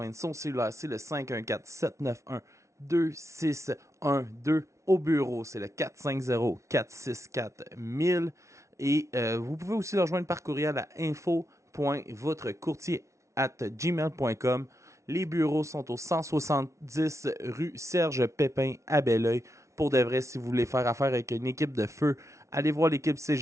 son cellulaire, c'est le 514-791-2612. Au bureau, c'est le 450-464-1000. Et vous pouvez aussi le rejoindre par courriel à info.votrecourtier@gmail.com. Les bureaux sont au 170 rue Serge Pépin à Belleuil. Pour de vrai, si vous voulez faire affaire avec une équipe de feu, allez voir l'équipe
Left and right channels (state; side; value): late; left; 0.14 ms